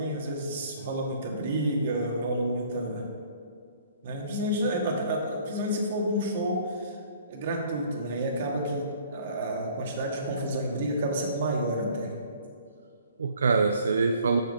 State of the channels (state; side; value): inverted; both; correlation -0.56